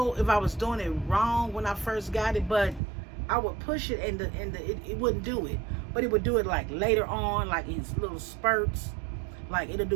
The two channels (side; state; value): left; drops out; at 2.8 s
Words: if I was doing it wrong when I first got it, but I would push it and it wouldn't do it, but it would do it like later on, like in little spurts. Like it'll